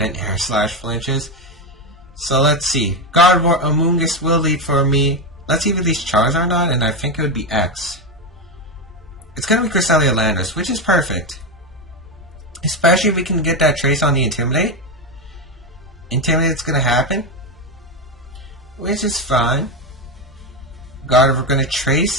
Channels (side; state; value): both; normal; correlation 0.11